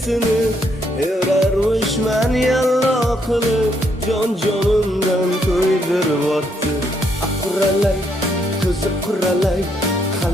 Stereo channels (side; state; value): both; normal; correlation 0.74